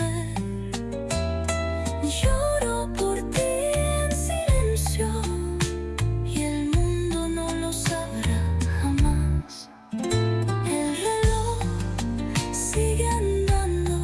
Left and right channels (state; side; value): identical; both; correlation 1.00